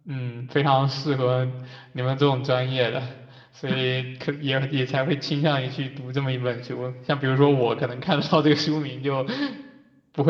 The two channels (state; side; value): identical; both; correlation 1.00